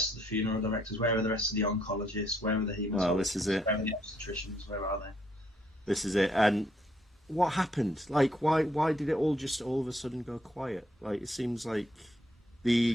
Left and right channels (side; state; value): both; normal; correlation 0.71